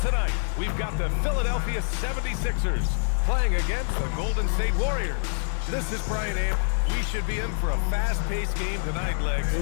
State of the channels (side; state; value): right; silent; digital silence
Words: we've got the Philadelphia 76ers playing against the Golden State Warriors. This is Brian Amp. We should be in for a fast-paced game tonight, Legs. Here